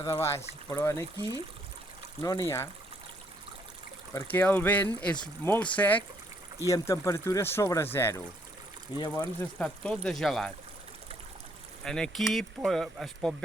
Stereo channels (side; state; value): both; normal; correlation 0.69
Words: de baix, però aquí no n'hi ha, perquè el vent és molt sec i amb temperatures sobre zero, i llavors està tot de gelat. Aquí es pot